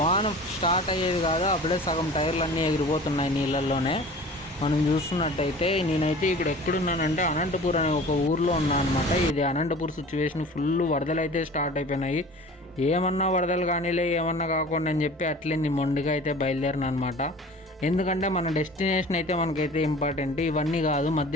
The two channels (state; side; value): normal; both; correlation 0.42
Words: స్టార్ట్ అయ్యేది కాదు, అప్పుడే సగం టైర్లు ఎగిరిపోతున్నాయి నీళ్ళల్లోనే. మనం చూస్తున్నట్టయితే నేనైతే ఇక్కడ ఎక్కడున్నానంటే అనంతపూర్ అనే ఒక ఊర్లో ఉన్నాను అనమాట. ఇది అనంతపూర్ సిచ్యువేషన్, ఫుల్ వరదలు అయితే స్టార్ట్ అయిపోయినాయి. ఏమన్నా వరదలు కానీలే, ఏమన్నా కాకుండా అని చెప్పి అట్లే నేను మొండిగా అయితే బయలుదేరిన అనమాట. ఎందుకంటే మన డెస్టినేషన్ అయితే మనకైతే ఇంపార్టెంట్, ఇవన్నీ కాదు.